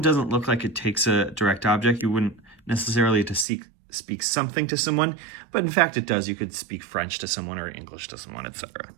doesn't look like it takes a direct object. You wouldn't necessarily to speak something to someone, but in fact it does. You could speak French to someone or English to someone, etc.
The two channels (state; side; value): drops out; left; at 3.5 s